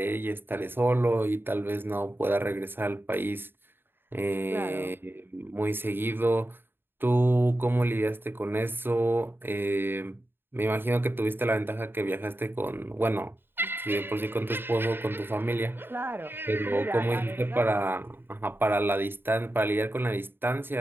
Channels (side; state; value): left; late; 0.10 ms